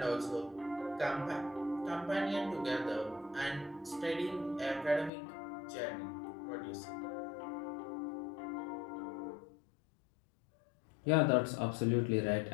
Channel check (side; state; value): right; drops out; at 5.1 s